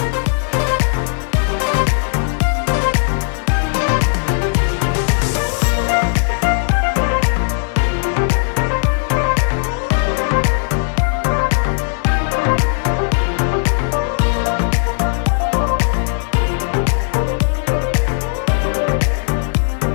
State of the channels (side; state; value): right; silent; digital silence